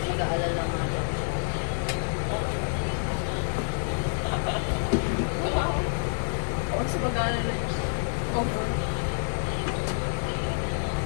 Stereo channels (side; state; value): right; silent; digital silence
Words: nag-aalala nga daw. Huwag sa pag-aalala niya. Comfort.